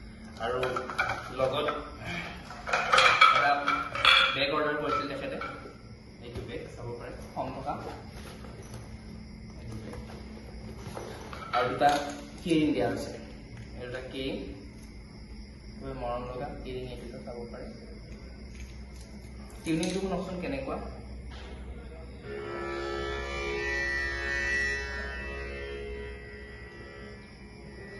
আৰু লগত এটা বেগ অৰ্ডাৰ কৰিছিল তেখেতে এইটো বেগ চাব পাৰে কম টকা আৰু দুটা কিৰিং দিয়া হৈছে এই দুটা কিৰিং মৰম লগা কিৰিং এইটো চাব পাৰে টিউনিংটো শুনকচোন কেনেকুৱা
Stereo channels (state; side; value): identical; both; correlation 1.00